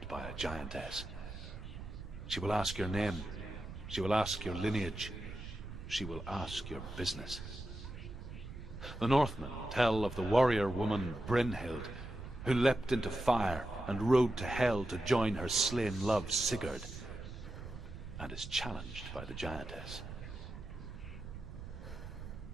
by a giantess. She will ask your name. She will ask your lineage. She will ask your business. The Northmen tell of the warrior woman Brynhild, who leapt into fire and rode to Hell to join her slain love Sigurd, and is challenged by the giantess.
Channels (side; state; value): right; noise; rumble, 10 dB below the sound